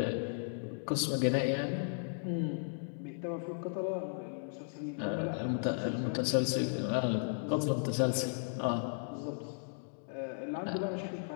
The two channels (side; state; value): right; silent; digital silence